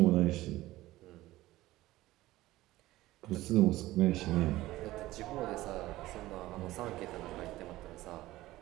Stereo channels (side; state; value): left; quieter; 16.9 dB